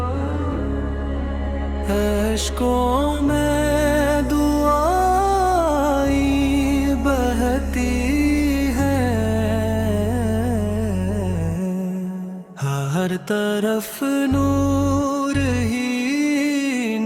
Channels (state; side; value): identical; both; correlation 1.00